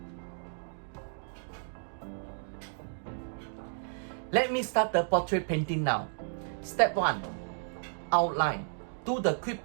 Let me start the portrait painting now. Step 1. Outline. Do the quick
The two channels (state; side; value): silent; left; digital silence